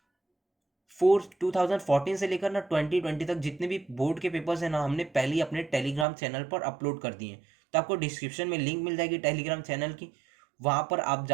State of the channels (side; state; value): left; drops out; at 6.1 s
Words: से लेकर ना 2020 तक जितने भी बोर्ड के पेपर्स हैं ना, हमने पहले ही अपने टेलीग्राम चैनल पर अपलोड कर दिए हैं। तो आपको डिस्क्रिप्शन में लिंक मिल जाएगी टेलीग्राम चैनल की, वहाँ पर आप